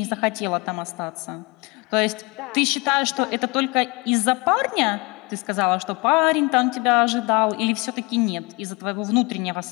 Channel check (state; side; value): quieter; right; 27.1 dB